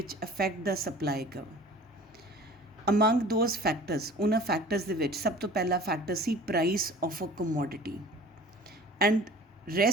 affect the supply curve. Among those factors, ਉਹਨਾਂ factors ਦੇ ਵਿੱਚ ਸਭ ਤੋਂ ਪਹਿਲਾ factor C price of a commodity, and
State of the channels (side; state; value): both; normal; correlation 0.44